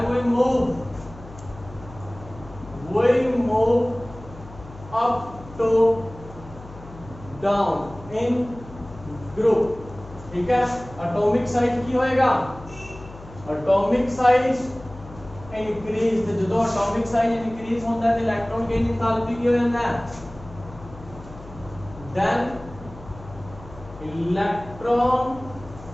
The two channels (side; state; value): left; noise; hum, 17 dB below the sound